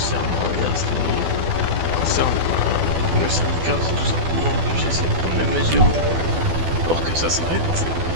le syndicat, tout simplement, que j'essaie de prendre mes mesures pour que ça s'arrête.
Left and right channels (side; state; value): left; late; 12 ms